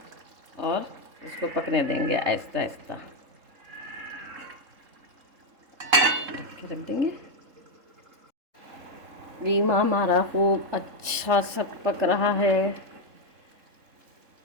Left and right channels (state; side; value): late; left; 3.7 ms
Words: और इसको पकने देंगे आहिस्ता आहिस्ता। रख देंगे। कीमा हमारा खूब अच्छा सा पक रहा है।